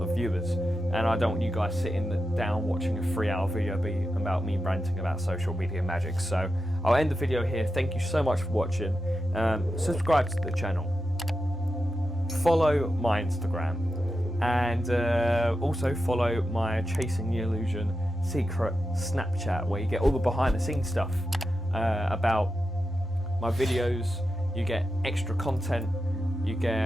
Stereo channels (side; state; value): both; normal; correlation 0.89